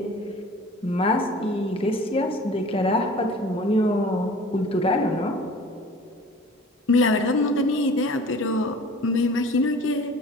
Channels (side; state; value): both; normal; correlation 0.44